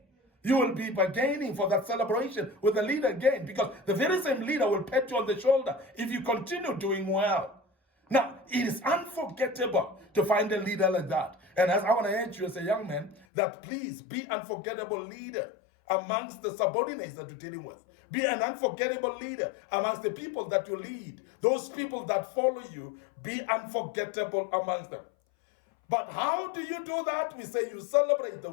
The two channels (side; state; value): right; drops out; at 13.2 s